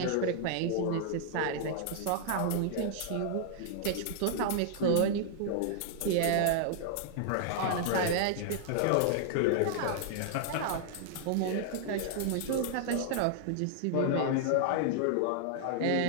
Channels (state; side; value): different; both; correlation -0.01